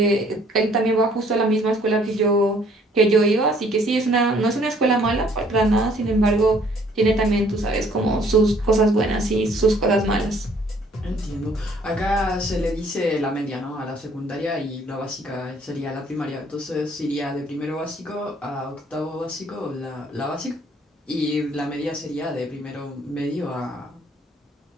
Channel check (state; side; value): normal; both; correlation 0.61